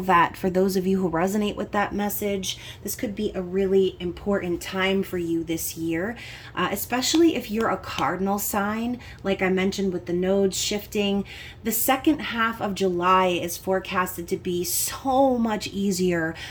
for those of you who resonate with that message, this could be a really important time for you this year, especially if you're a cardinal sign. Like I mentioned with the nodes shifting, the second half of July is forecasted to be so much easier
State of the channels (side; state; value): both; identical; correlation 1.00